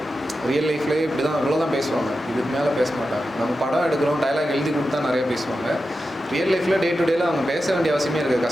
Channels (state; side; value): normal; both; correlation 0.91